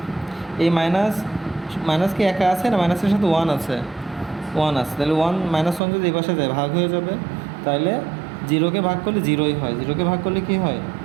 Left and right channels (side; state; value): left; drops out; at 5.8 s